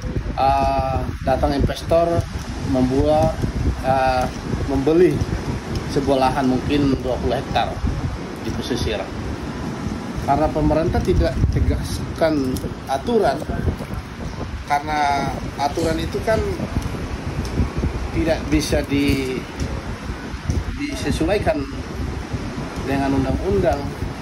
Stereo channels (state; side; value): identical; both; correlation 1.00